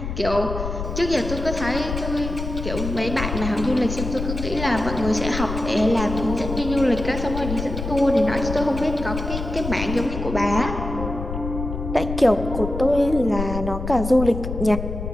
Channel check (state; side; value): noise; left; rumble, 6 dB below the sound